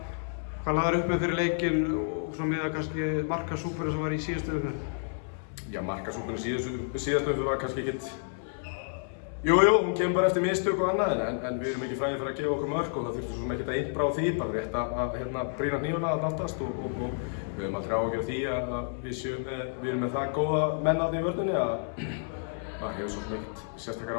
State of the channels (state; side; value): silent; right; 57 dB below the other